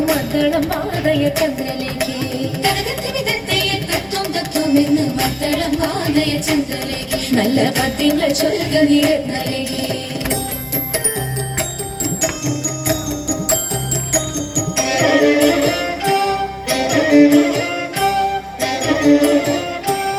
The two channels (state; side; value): identical; both; correlation 1.00